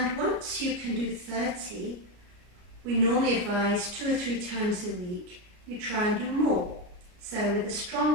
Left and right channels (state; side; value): late; left; 33 ms